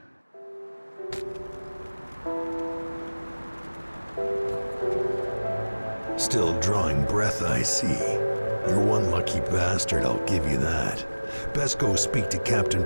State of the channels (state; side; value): inverted; both; correlation -1.00